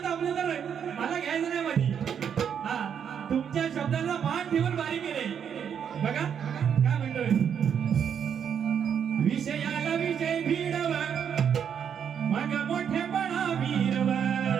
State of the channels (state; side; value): quieter; left; 8.0 dB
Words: दाबले तर मला घ्यायचं नाही मध्ये. तुमच्या शब्दाचा मान ठेवून बारी केले. बघा काय म्हणतोय. विषयाला विषय भिडव मग मोठेपणा वीरव.